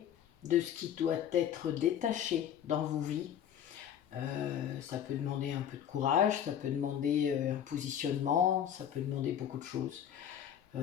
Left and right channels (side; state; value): right; quieter; 9.5 dB